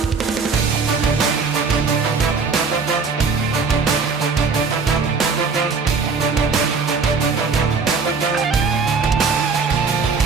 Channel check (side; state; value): left; quieter; 4.9 dB